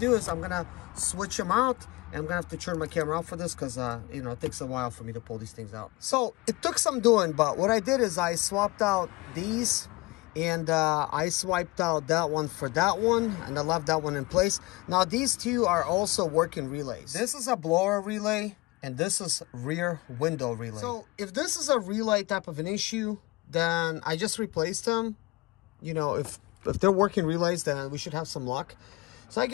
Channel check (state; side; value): quieter; right; 21.8 dB